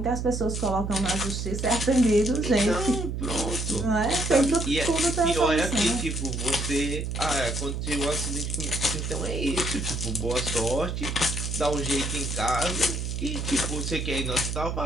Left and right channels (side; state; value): right; noise; hum, 3 dB below the sound